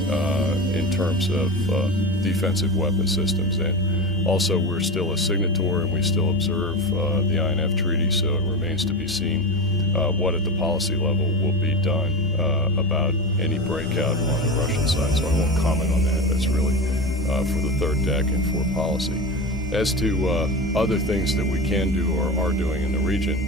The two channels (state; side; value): normal; both; correlation 0.24